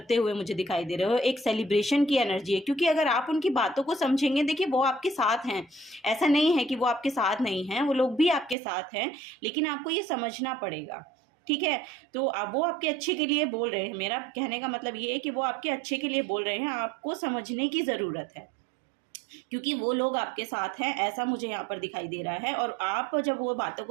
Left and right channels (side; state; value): left; drops out; at 8.6 s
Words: हुए मुझे दिखाई दे रहे हो। एक सेलिब्रेशन की एनर्जी है, क्योंकि अगर आप उनकी बातों को समझेंगे, देखिए वो आपके साथ हैं, ऐसा नहीं है कि वो आपके साथ नहीं हैं, वो लोग भी आपके साथ हैं, लेकिन आपको ये समझना पड़ेगा, ठीक है। तो अब वो आपके अच्छे के लिए बोल रहे हैं, मेरा कहने का मतलब ये है कि वो आपके अच्छे के लिए बोल रहे हैं, आपको समझने की ज़रूरत है, क्योंकि वो लोग आपके साथ हैं, ऐसा मुझे यहाँ पर दिखाई दे रहा है। और आप जब वो बातों